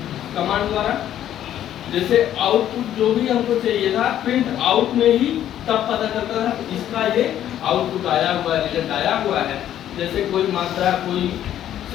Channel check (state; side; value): quieter; right; 11.3 dB